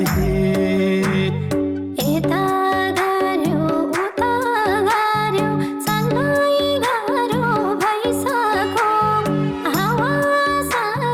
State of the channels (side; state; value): both; identical; correlation 1.00